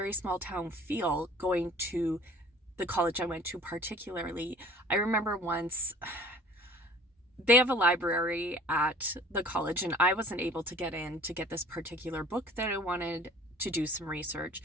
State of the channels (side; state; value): both; normal; correlation 0.48